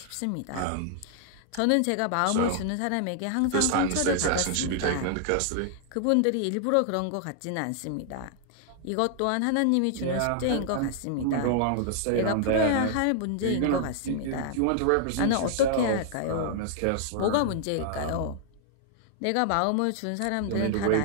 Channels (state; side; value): different; both; correlation 0.00